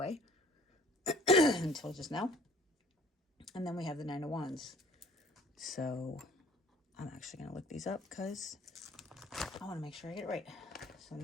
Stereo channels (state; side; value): normal; both; correlation 0.54